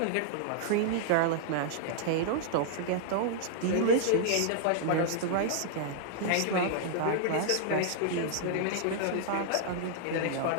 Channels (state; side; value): different; both; correlation -0.01